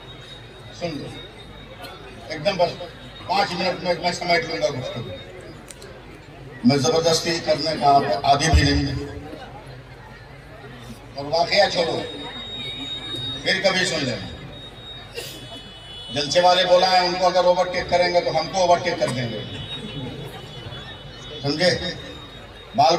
सुन लो एकदम, बस 5 मिनट में मैं समेट लूंगा गुफ्तगू। मैं जबरदस्ती करने का आदी भी नहीं है। और वाकया छोड़ो, फिर कभी सुन लेना। जलसे वाले बोला है उनको अगर ओवरटेक करेंगे तो हमको ओवरटेक कर देंगे, समझे? बाल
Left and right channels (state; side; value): identical; both; correlation 1.00